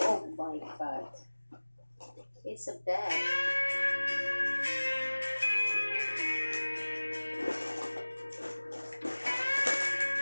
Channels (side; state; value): both; inverted; correlation -1.00